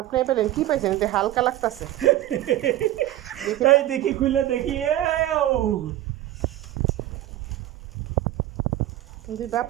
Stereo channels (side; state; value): left; quieter; 14.3 dB